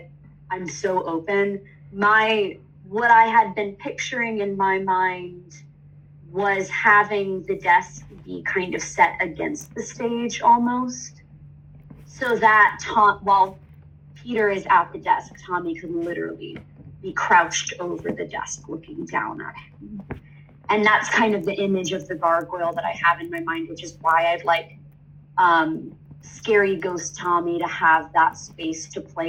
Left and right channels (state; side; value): identical; both; correlation 1.00